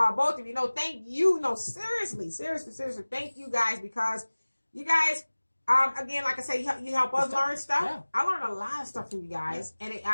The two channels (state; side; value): inverted; both; correlation -1.00